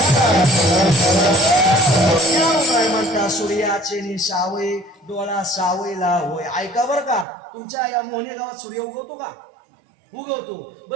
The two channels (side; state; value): left; drops out; at 7.2 s